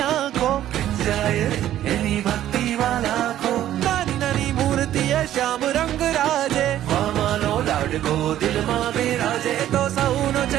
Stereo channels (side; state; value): left; quieter; 12.4 dB